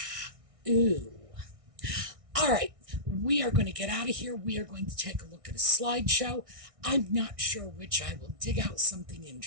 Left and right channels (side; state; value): left; late; 1.6 ms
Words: all right, we are going to get out of here. We are going to take a look at a slideshow. I'm not sure which. I will dig out something